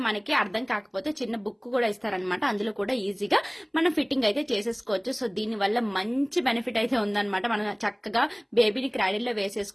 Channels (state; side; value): identical; both; correlation 1.00